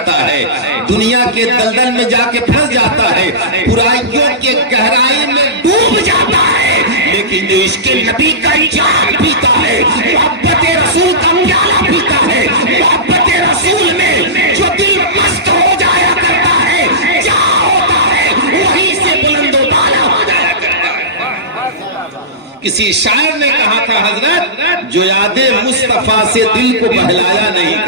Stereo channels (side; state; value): both; normal; correlation -0.17